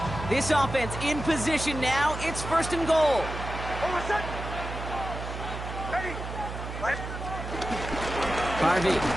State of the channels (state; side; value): noise; right; hum, 7 dB below the sound